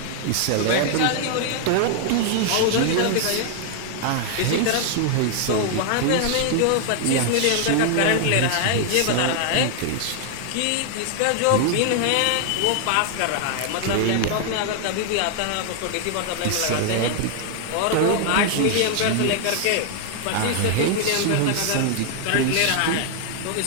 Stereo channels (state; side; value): different; both; correlation 0.00